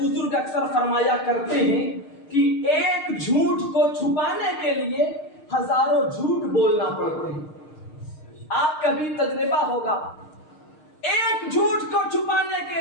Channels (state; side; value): late; right; 6.5 ms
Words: اکثر فرمایا کرتے ہیں کہ ایک جھوٹ کو چھپانے کے لیے ہزاروں جھوٹ بولنا پڑتے ہیں. آپ کا بھی تجربہ ہوگا، ایک جھوٹ کو چھپانے